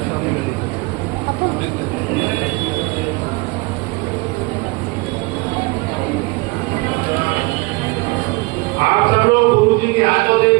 आप सब लोग गुरु जी के हाथों से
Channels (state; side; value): quieter; left; 25.7 dB